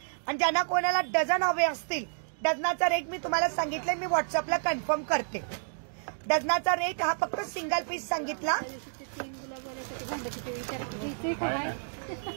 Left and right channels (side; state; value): left; silent; digital silence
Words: आणि ज्यांना कोणाला डझन हवे असतील डझनाचा रेट मी तुम्हाला सांगितलंय. मी व्हॉट्सअपला कन्फर्म करते. डझनाचा रेट हा फक्त सिंगल पीस सांगितला.